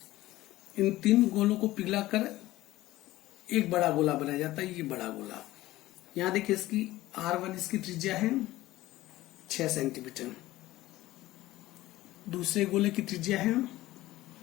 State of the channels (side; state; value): right; quieter; 16.8 dB